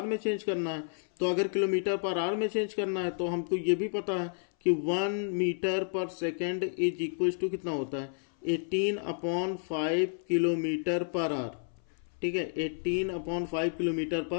में चेंज करना है। तो अगर किलोमीटर पर आवर में चेंज करना है तो हमको ये भी पता है कि 1 metre per second is equal to कितना होता है 18/5 किलोमीटर पर आवर। ठीक है, 18/5 किलोमीटर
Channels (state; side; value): silent; right; 57 dB below the other